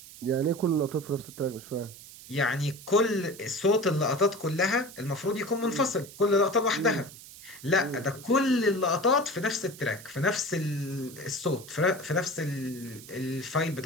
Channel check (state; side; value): noise; right; hiss, 17 dB below the sound